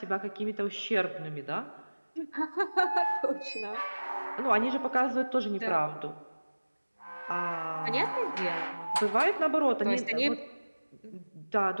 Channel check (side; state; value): both; inverted; correlation -1.00